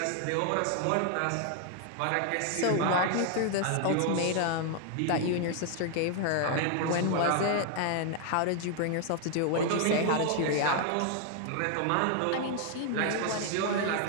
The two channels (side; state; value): both; different; correlation 0.00